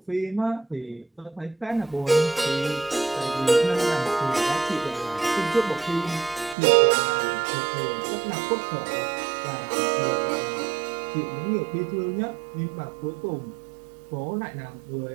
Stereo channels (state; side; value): drops out; left; at 6.6 s